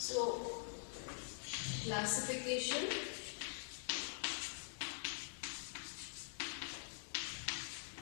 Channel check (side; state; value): right; silent; digital silence